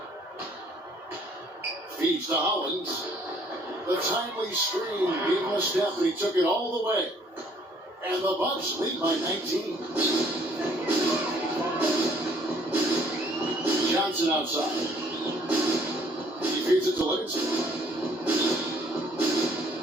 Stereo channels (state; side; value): normal; both; correlation 0.61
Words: Feeds to Hollins. The timely screen gave him a step, and he took it all the way. And the Bucks lead by 19. Johnson outside. He feeds it to Livingston.